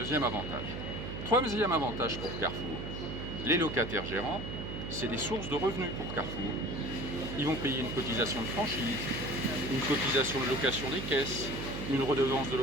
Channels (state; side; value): noise; right; hum, 6 dB below the sound